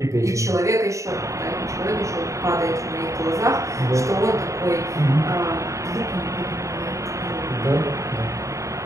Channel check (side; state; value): left; late; 0.15 ms